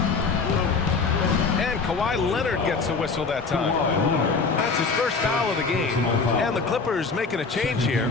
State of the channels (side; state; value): right; quieter; 4.6 dB